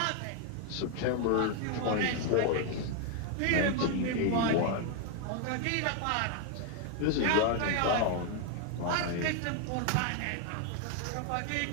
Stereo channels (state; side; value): different; both; correlation 0.00